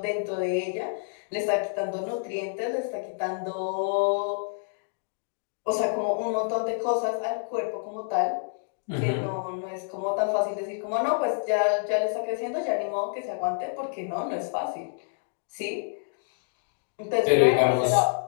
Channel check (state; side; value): silent; right; digital silence